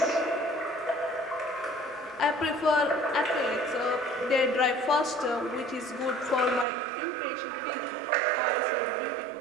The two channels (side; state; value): left; drops out; at 6.7 s